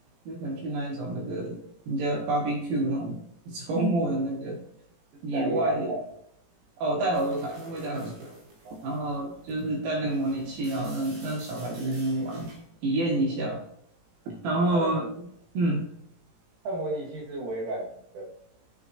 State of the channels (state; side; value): late; left; 18 ms